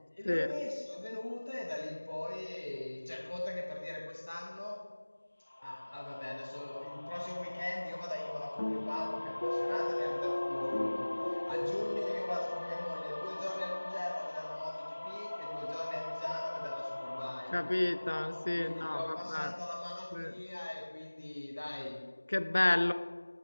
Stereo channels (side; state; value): both; inverted; correlation -1.00